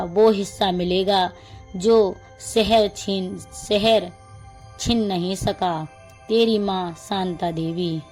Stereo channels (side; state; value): both; identical; correlation 1.00